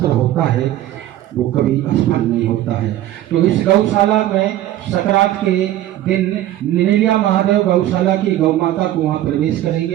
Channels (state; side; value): quieter; left; 13.6 dB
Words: होता है, वो कभी असफल नहीं होता है। तो इस गौशाला में सकरात के दिन नीलिया महादेव गौशाला की गौ माता को वहाँ प्रवेश